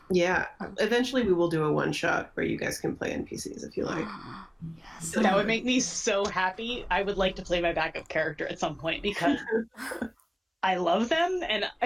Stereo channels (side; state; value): both; identical; correlation 1.00